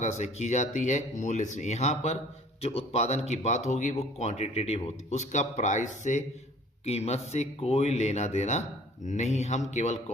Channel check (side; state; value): both; normal; correlation 0.51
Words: से की जाती है, मूल्य से। यहाँ पर जो उत्पादन की बात होगी वो क्वांटिटेटिव होती है, उसका प्राइस से, कीमत से कोई लेना देना नहीं। हम केवल